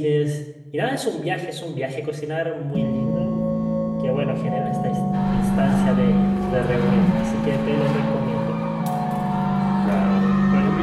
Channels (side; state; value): both; identical; correlation 1.00